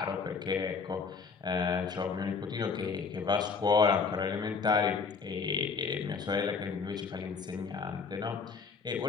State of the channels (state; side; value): quieter; right; 5.2 dB